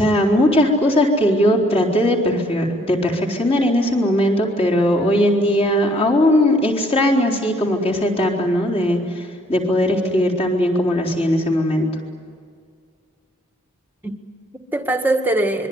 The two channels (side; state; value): both; normal; correlation 0.64